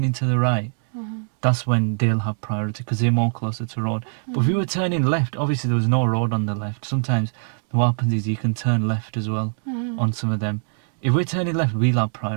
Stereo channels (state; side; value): silent; left; 64 dB below the other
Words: to the right, that's when they'll have priority because they're more closer to road. But if we were turning left, obviously there was no road on the left. Sometimes what happens is you can turn left as well on some of them. If we're turning left, we'll have